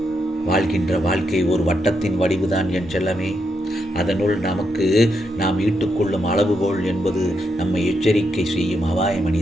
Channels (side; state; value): both; normal; correlation 0.81